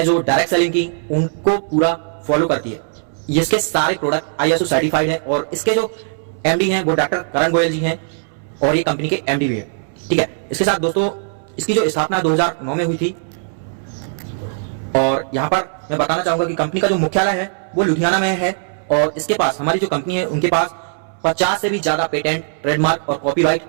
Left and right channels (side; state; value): left; silent; 67 dB below the other